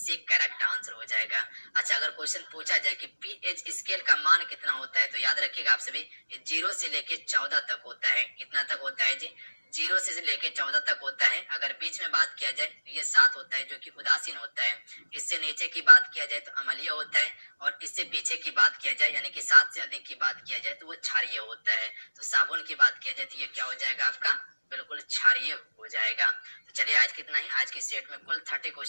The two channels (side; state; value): both; inverted; correlation -1.00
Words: करेक्ट आंसर हो जाएगा। अच्छा, अगर क्वेश्चन पूछा जाए कि पीएच स्केल का मान कितना होता है तो याद रखिएगा आप सभी, 0 से लेके 14 तक होता है। कितना तक होता है जी? 0 से लेके 14 तक होता है। अगर बीच में बात किया जाए तो ये 7 होता है जो कि उदासीन होता है। इससे नीचे की बात किया जाए तो अम्लीय होता है, और इससे पीछे की बात किया जाए यानी कि 7 से अधिक की बात किया जाए तो वो क्षारीय होता है। तो साबुन की बात किया जाए तो ये क्या हो जाएगा आपका? बिल्कुल क्षारीय हो जाएगा। तो चलिए आज कितना ही, आज के सेट में कुल 30